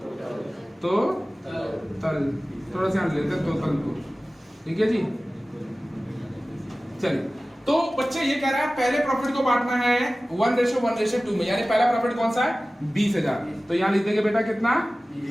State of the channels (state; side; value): normal; both; correlation 0.97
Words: तो तल, थोड़ा सा लेते हैं टोटल को, ठीक है जी। चलिए, तो बच्चे ये कह रहा है पहले प्रॉफिट को बांटना है 1:1:2 में, यानी पहला प्रॉफिट कौन सा है, 20,000। तो यहाँ लिख देंगे बेटा कितना,